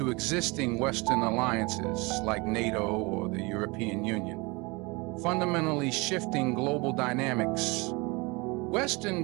existing Western alliances like NATO or the European Union, fundamentally shifting global dynamics.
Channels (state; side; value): quieter; left; 26.5 dB